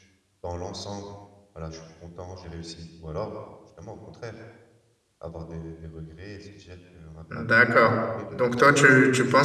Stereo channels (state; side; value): identical; both; correlation 1.00